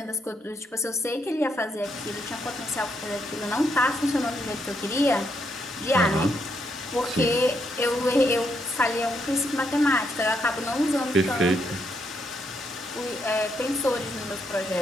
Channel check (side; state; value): both; normal; correlation 0.77